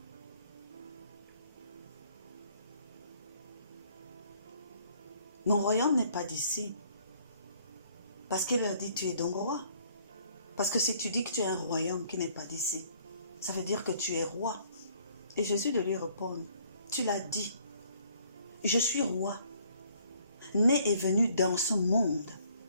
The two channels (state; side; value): inverted; both; correlation -0.61